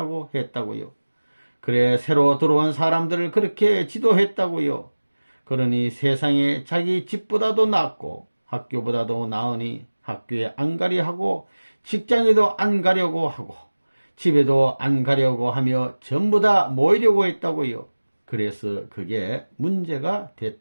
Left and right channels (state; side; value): inverted; both; correlation -1.00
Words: 했다고요. 그래 새로 들어온 사람들을 그렇게 지도했다고요. 그러니 세상에 자기 집보다도 낫고 학교보다도 나으니 학교에 안 가려 하고 직장에도 안 가려고 하고 집에도 안 가려고 하며 전부 다 모이려고 했다고요. 그래서 그게 문제가